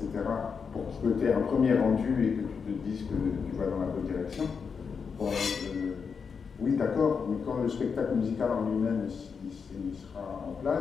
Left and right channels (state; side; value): quieter; right; 5.9 dB